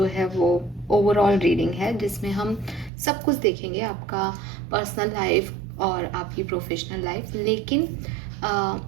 है वो ओवरऑल रीडिंग है, जिसमें हम सब कुछ देखेंगे, आपका पर्सनल लाइफ और आपकी प्रोफेशनल लाइफ। लेकिन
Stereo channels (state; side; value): drops out; left; at 2.9 s